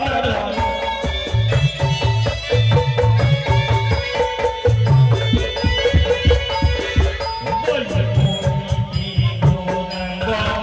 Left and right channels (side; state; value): both; identical; correlation 1.00